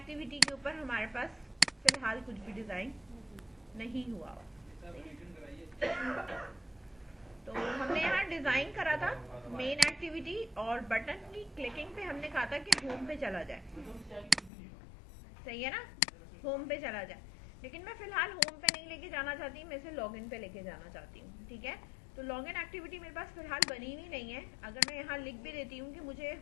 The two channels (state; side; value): drops out; right; at 14.5 s